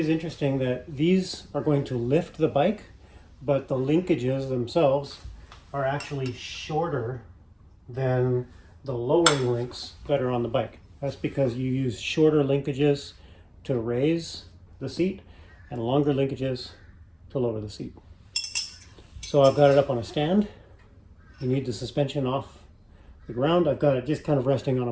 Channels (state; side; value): identical; both; correlation 1.00